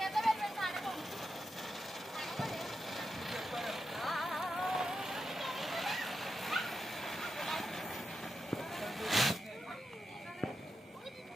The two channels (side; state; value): both; normal; correlation 0.87